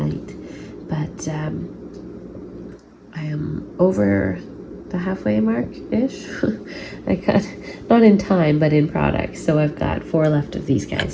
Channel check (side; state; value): both; identical; correlation 1.00